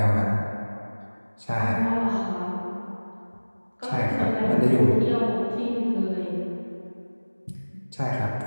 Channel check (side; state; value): both; inverted; correlation -1.00